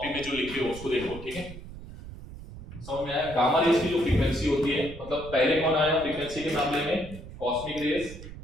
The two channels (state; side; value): noise; right; rumble, 13 dB below the sound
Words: में, जो लिखे हो उसको देखो, ठीक है। समझ में आया? गामा रेज की जो फ्रीक्वेंसी होती है, मतलब पहले कौन आया फ्रीक्वेंसी के मामले में? Cosmic rays.